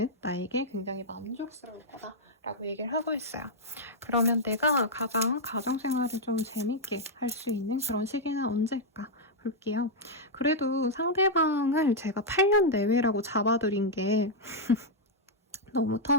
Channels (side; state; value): both; normal; correlation -0.04